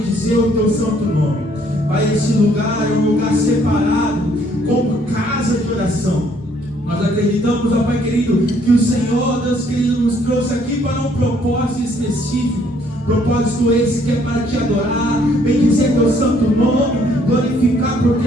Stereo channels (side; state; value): both; normal; correlation 0.65